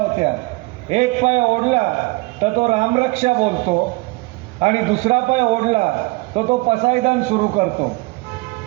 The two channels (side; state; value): left; quieter; 24.3 dB